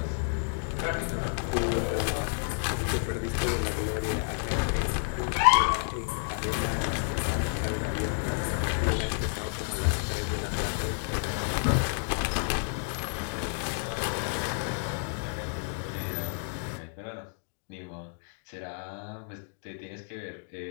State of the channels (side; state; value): right; silent; 58 dB below the other